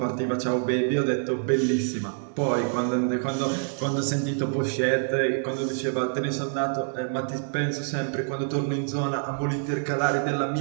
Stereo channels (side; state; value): left; silent; digital silence